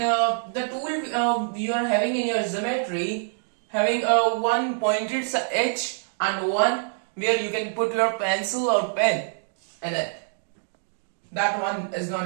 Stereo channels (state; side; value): silent; left; 61 dB below the other